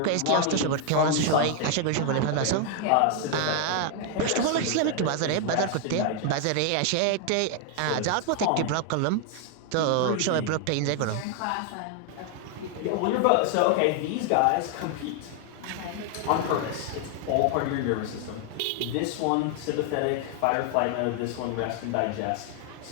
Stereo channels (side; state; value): both; different; correlation 0.00